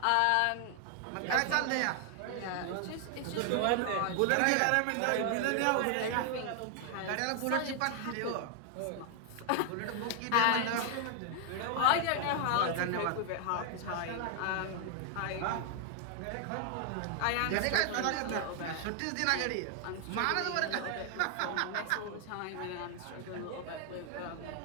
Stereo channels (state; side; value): different; both; correlation 0.00